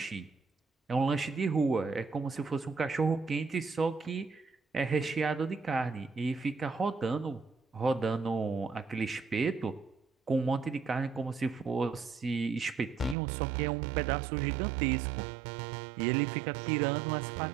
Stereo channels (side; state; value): left; drops out; at 13.2 s